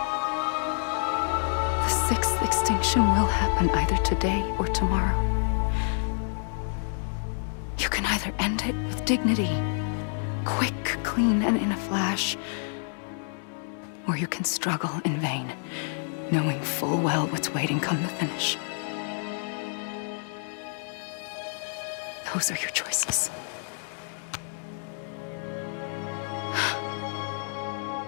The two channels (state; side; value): silent; right; 59 dB below the other